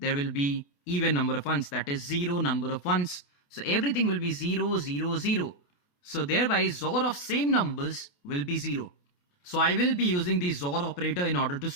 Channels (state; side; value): late; right; 28 ms